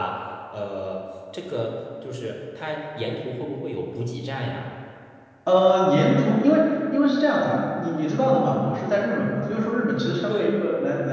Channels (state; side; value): identical; both; correlation 1.00